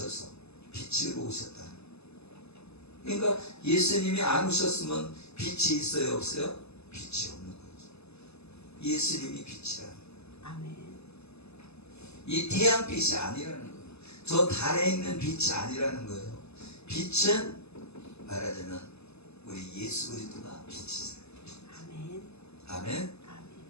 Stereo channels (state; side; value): late; right; 0.80 ms